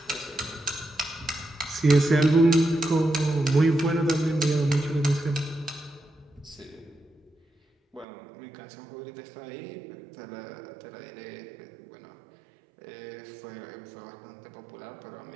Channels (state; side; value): drops out; left; at 8.1 s